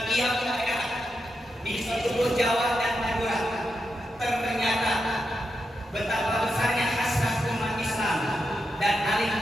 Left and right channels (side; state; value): both; normal; correlation 0.86